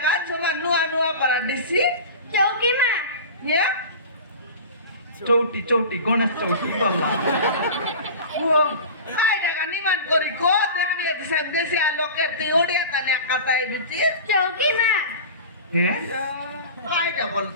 তোমা নুয়া নুয়া পারা দিছি চৌকি মা নিয়া চৌটি চৌটি গণেশ চৌটি বললা ও কাই ডাকা নিমান করি কো দেখবি দিছান দেশি আলোকের তুই ওড়িয়া তালে কাটাই বিচি চৌকি মা হ্যাঁ কাইটা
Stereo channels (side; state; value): both; inverted; correlation -0.34